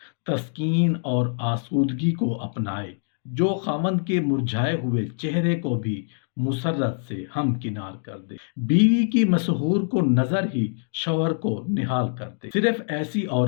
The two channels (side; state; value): right; silent; digital silence